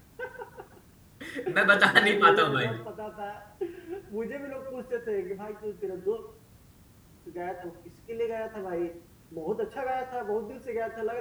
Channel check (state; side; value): identical; both; correlation 1.00